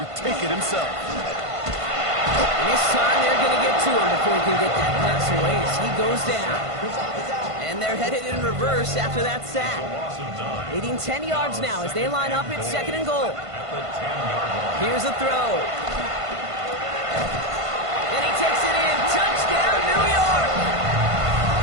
take it himself. And this time they're going to get to him before he can get that pass away as he goes down. And they're headed in reverse after that sack. Leading 10 yards now as they line up at 2nd and goal. Here's a throw. And he takes it in. Touchdown, New York!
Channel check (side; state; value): left; late; 1.5 ms